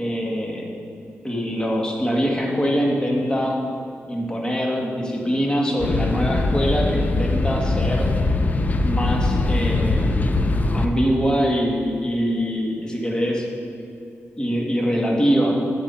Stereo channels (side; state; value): both; normal; correlation 0.88